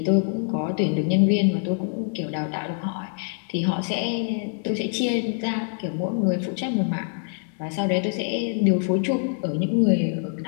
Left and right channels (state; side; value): silent; right; 56 dB below the other